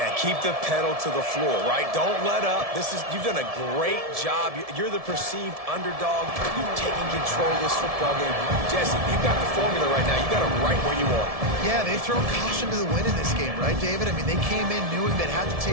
keep the pedal to the floor, right? Don't let up. You've done a great job. You're the perceived underdog. You've taken control of this football game. Jesse, you've got the formula right now. You got it right where you want. Yeah, they've thrown caution to the wind in this game, right, David? I mean, they came in knowing they'd have to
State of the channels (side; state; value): left; late; 1.7 ms